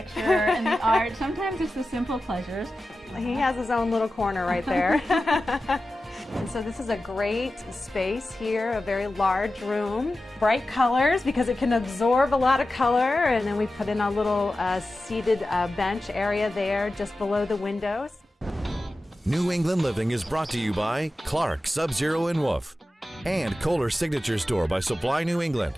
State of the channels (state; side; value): normal; both; correlation 0.94